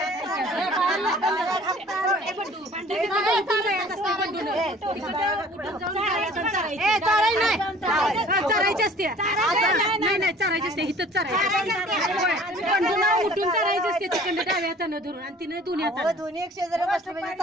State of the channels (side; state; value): both; normal; correlation 0.50